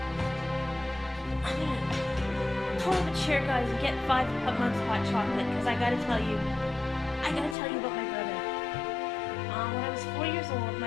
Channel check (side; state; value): right; drops out; at 7.6 s